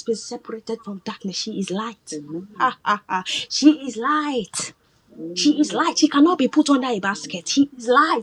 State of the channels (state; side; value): identical; both; correlation 1.00